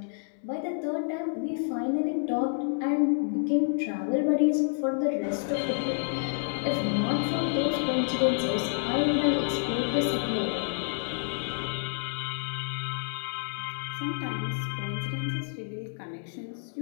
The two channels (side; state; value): right; silent; digital silence